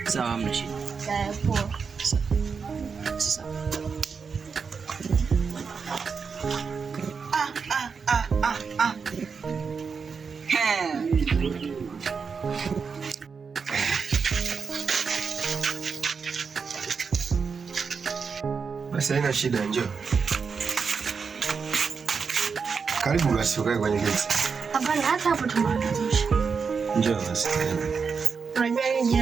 Sawa, hamna shida. Sawa, poa. Sawa. Basi haina shida, njoo. Karibu basi ukae kwenye kiti. Hapana, hata hapo tumeanzisha. Njoo basi. Unajua yeye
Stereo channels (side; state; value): left; quieter; 5.6 dB